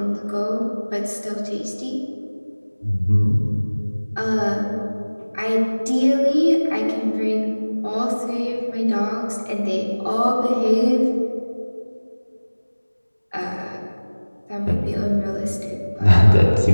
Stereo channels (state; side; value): inverted; both; correlation -1.00